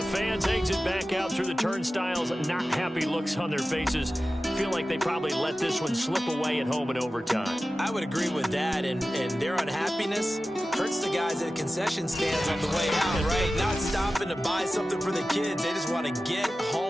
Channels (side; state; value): both; normal; correlation 0.95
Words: fans exit back out through the turnstiles, not happy looks on their faces. Feel like they probably let this one slip away at home in overtime. I would agree with that, and their unhappiness hurts the guys at the concession stands on the way out, right? Not stopping to buy something for the kids. They just want to get